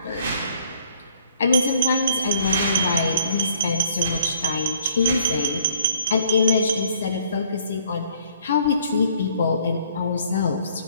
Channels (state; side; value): inverted; both; correlation -0.60